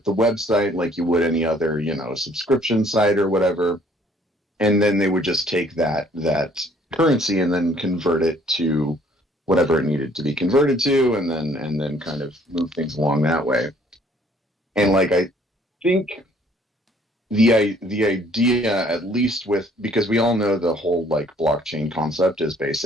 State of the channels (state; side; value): normal; both; correlation 0.60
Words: the website like you would any other subscription site or whatever, and then they would just take that currency and then convert it to whatever it needed to be converted to, and then kind of move things along that way. And like I think the idea, at least because we all know the whole like blockchain concept is